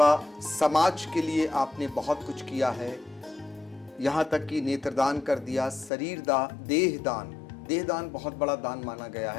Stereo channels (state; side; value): drops out; right; at 5.9 s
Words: समाज के लिए आपने बहुत कुछ किया है, यहाँ तक कि नेत्रदान कर दिया, देहदान बहुत बड़ा दान माना गया